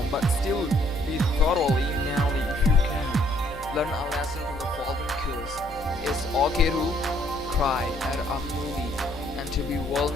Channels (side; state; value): both; normal; correlation 0.66